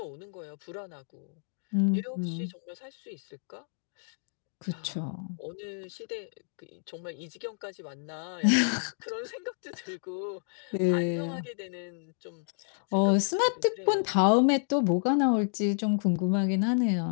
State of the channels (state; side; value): silent; right; digital silence